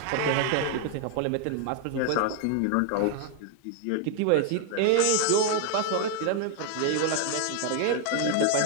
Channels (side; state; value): both; different; correlation 0.00